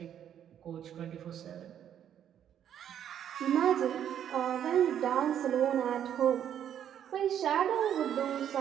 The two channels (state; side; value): quieter; left; 9.7 dB